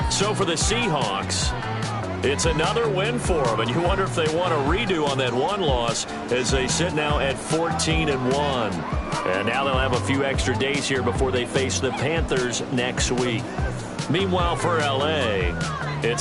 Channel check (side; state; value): both; identical; correlation 1.00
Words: So for the Seahawks, it's another win for them, and you wonder if they want a redo on that one loss as they sit now at 14-1. And now they'll have a few extra days here before they face the Panthers next week. Meanwhile, for L.A.,